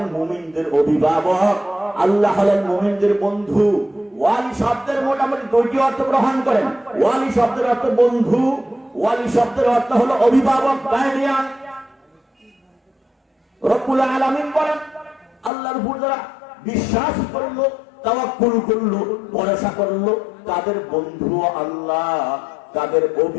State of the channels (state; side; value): drops out; right; at 15.5 s